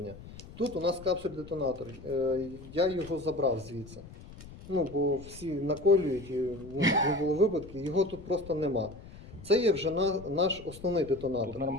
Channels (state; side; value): noise; left; rumble, 17 dB below the sound